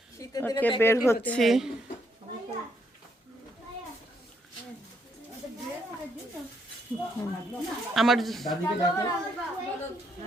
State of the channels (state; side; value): normal; both; correlation 0.73